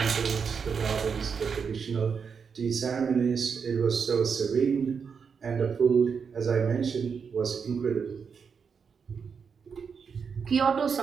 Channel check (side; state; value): left; quieter; 6.2 dB